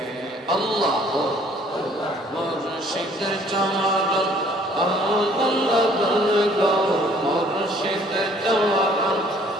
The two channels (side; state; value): both; normal; correlation 0.58